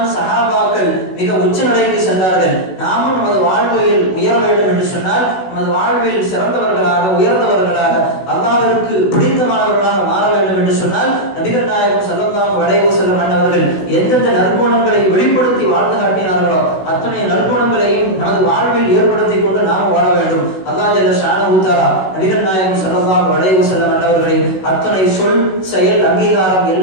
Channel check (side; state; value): right; late; 16 ms